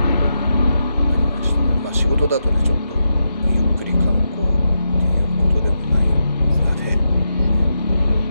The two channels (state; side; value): inverted; both; correlation -0.85